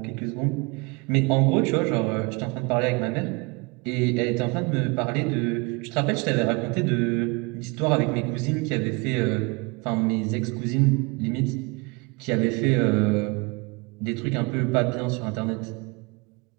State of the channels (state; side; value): quieter; left; 28.5 dB